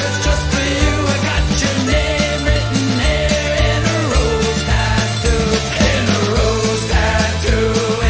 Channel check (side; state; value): both; identical; correlation 1.00